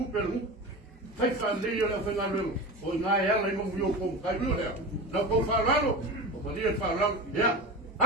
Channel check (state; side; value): normal; both; correlation 0.28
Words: Fai fale le la fai ngalo. O nga ela i mo vio kom kai lo le. Na ko falalo. O pa dia falalo. Ya.